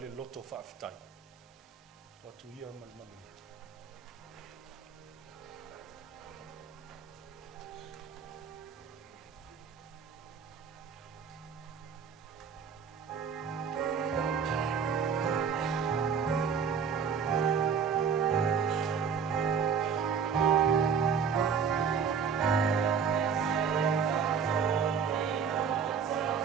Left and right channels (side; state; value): left; quieter; 6.6 dB